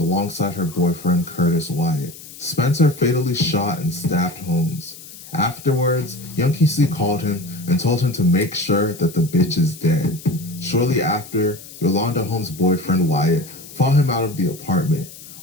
her boyfriend, Curtis Wyatt. Spencer fatally shot and stabbed Holmes. Afterwards, young QC called him and told him to make sure that the bitch is dead. Shortly after, Yolanda Holmes' boyfriend, Wyatt, fought him out of the apartment.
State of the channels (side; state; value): left; noise; hiss, 17 dB below the sound